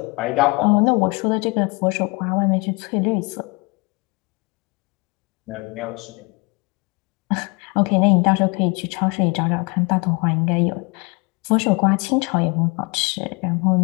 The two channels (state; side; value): quieter; right; 28.3 dB